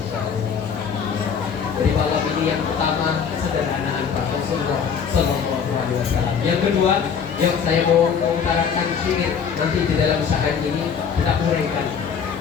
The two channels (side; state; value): right; quieter; 6.9 dB